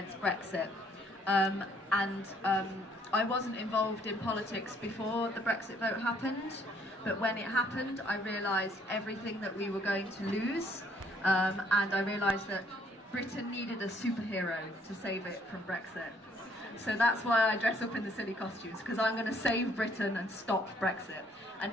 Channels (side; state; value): both; normal; correlation 0.65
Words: Brexit. I wasn't involved in politics before the Brexit vote happened, but when it happened, I realised everything that we were going to lose, and I realised that Britain needed a superhero to save it from Brexit. So that's why I dress up in the silly costumes, because I'm going to save Britain and stop Brexit. And